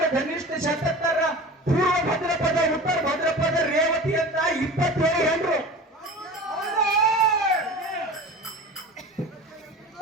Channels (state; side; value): normal; both; correlation 0.36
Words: ಧನಿಷ್ಠ ಶತತ್ತರ ಪೂರ್ವ ಭದ್ರಪದ ಉತ್ತರ ಭದ್ರಪದ ರೇವತಿ ಅಂತ 27 ಹೆಂಡ್ರು